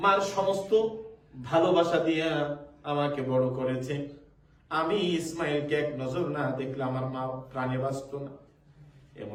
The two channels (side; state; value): both; identical; correlation 1.00